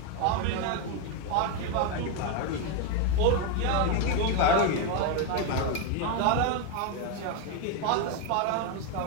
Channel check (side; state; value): both; different; correlation 0.02